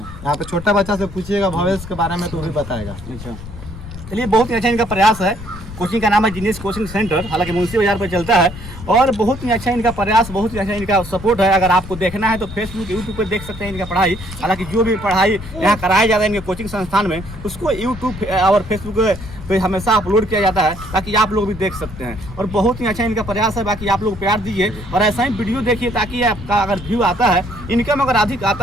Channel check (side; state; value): left; noise; rumble, 13 dB below the sound